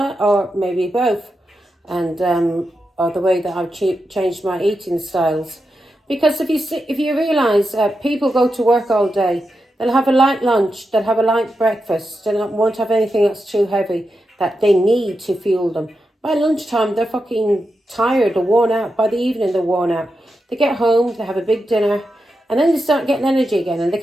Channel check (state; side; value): normal; both; correlation 0.88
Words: or maybe both, and or the way that I've changed my eating styles. Because if you realise, people go to work all day, they'll have a light lunch, they'll have a light breakfast, they won't have anything that's too heavy that they need to fuel them. By lunchtime, they're fucking tired or worn out. By the evening, they're worn out. They get home, they have a big dinner, and then they start getting energy again, and they